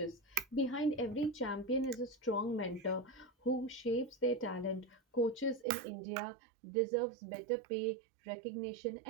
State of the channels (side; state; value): left; drops out; at 5.7 s